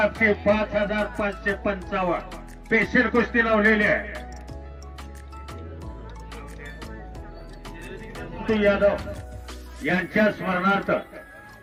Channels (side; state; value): both; identical; correlation 1.00